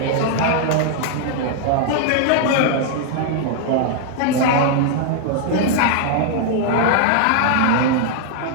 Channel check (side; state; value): both; different; correlation 0.00